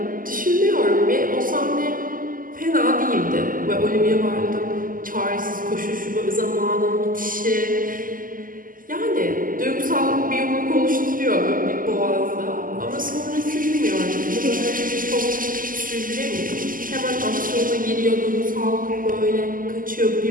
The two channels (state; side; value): late; left; 0.41 ms